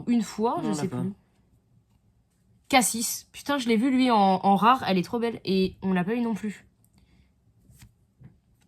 une fois, Non, je on sais l'a pas. plus. Cassis. Putain, je l'ai vu lui en rare. Elle est trop belle. Et on l'a pas eu non plus.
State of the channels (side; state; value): both; identical; correlation 1.00